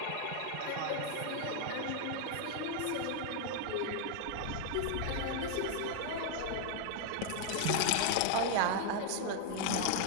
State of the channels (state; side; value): different; both; correlation 0.00